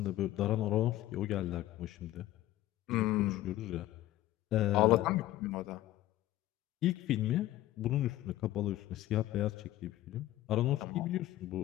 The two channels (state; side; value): quieter; right; 14.8 dB